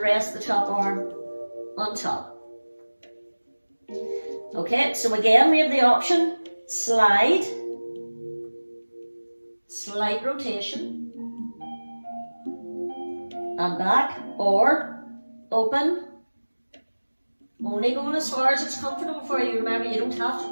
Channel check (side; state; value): both; inverted; correlation -1.00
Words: rest the top arm on top. Okay, so again we have the option, slide, slight rotation, and back, or open, only going as far as it's comfortable for you. Remember, you don't have to